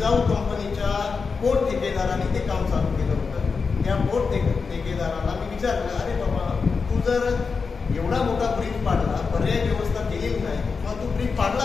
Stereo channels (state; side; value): quieter; right; 5.0 dB